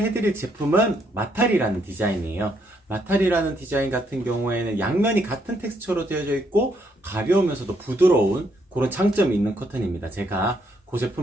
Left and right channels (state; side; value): normal; both; correlation 0.73